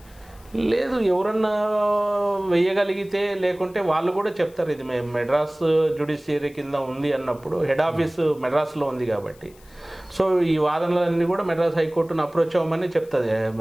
లేదు, ఎవరన్నా వేయగలిగితే, లేకుంటే వాళ్ళు కూడా చెప్తారు ఇది మేము మెడ్రాస్ జ్యుడిషియరీ కింద ఉంది అన్నప్పుడు హెడ్ ఆఫీస్ మెడ్రాస్లో ఉంది కాబట్టి సో ఈ వాదనలన్నీ కూడా మెడ్రాస్ హైకోర్టును అప్రోచ్ అవ్వమని చెప్తుంది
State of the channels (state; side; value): noise; left; hiss, 27 dB below the sound